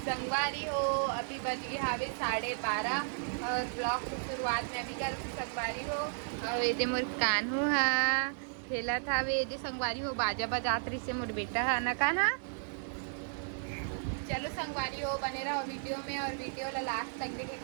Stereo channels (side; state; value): left; silent; digital silence